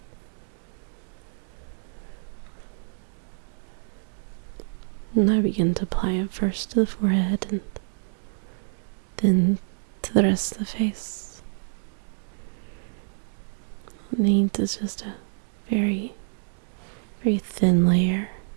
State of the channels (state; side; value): silent; left; digital silence